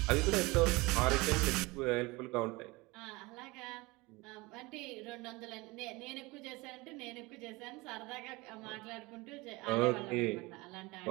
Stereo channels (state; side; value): quieter; left; 23.4 dB